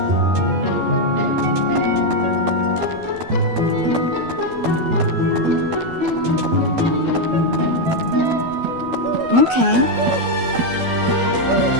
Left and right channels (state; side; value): late; left; 12 ms